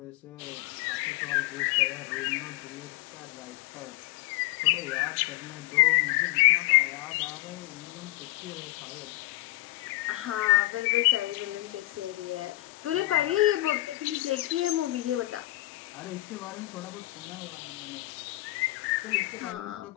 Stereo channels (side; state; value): right; quieter; 18.6 dB